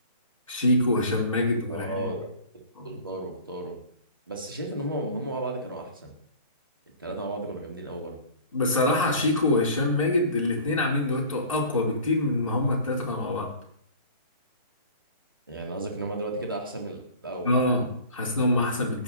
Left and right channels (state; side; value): inverted; both; correlation -0.43